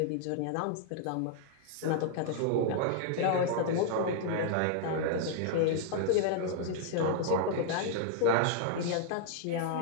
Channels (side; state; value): both; different; correlation -0.01